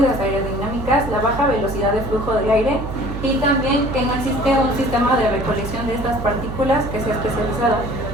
aerodinámicas, la baja velocidad de flujo de aire y también que no existe un sistema de recolección de estas partículas que sea especializado.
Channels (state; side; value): noise; right; hum, 7 dB below the sound